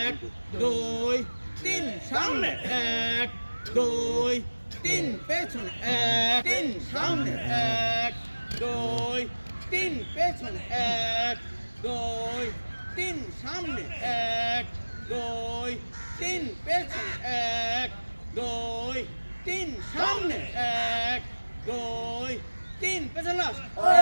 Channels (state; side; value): inverted; both; correlation -1.00